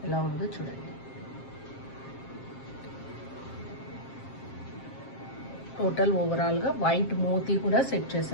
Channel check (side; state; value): right; late; 7.5 ms